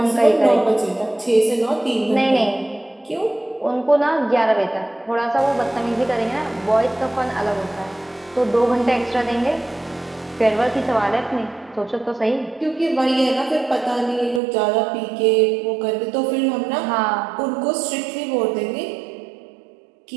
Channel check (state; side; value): drops out; left; at 14.4 s